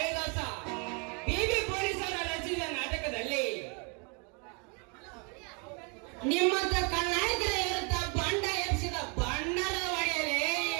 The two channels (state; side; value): quieter; left; 34.4 dB